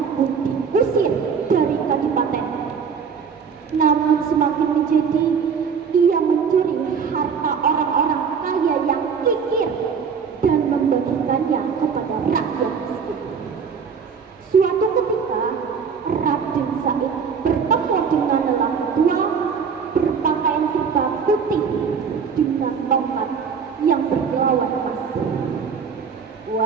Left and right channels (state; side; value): quieter; left; 6.3 dB